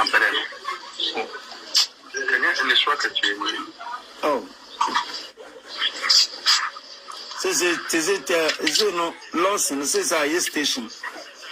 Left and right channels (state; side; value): identical; both; correlation 1.00